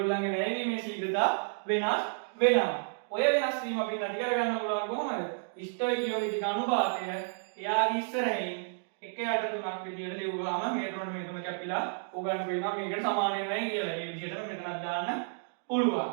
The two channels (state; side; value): silent; left; digital silence